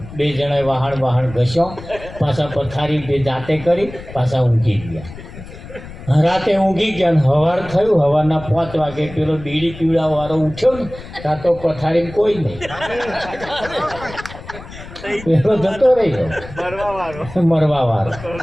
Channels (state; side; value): noise; left; rumble, 15 dB below the sound